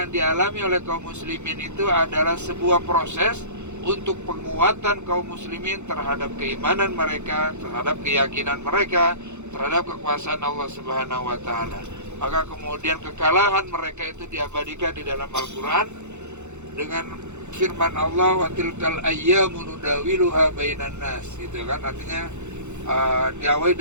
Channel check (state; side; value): late; left; 0.83 ms